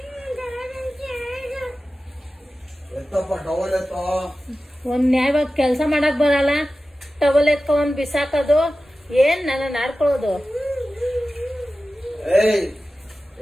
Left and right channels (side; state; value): both; normal; correlation 0.94